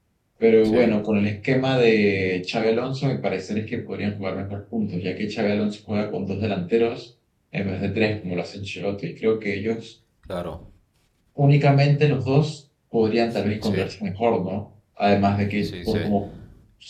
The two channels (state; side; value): identical; both; correlation 1.00